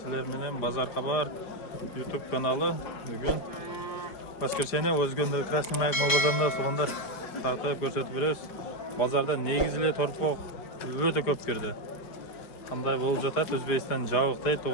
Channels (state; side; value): late; right; 5.0 ms